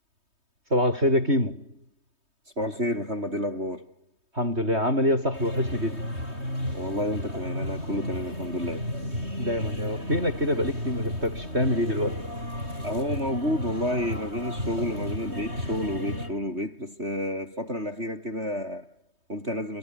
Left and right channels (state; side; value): late; left; 3.2 ms